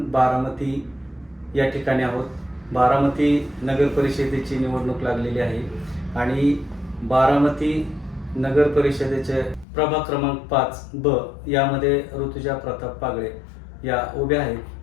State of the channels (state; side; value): drops out; right; at 9.7 s